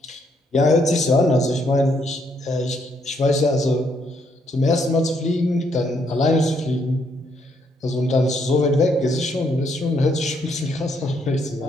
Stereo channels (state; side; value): normal; both; correlation 0.73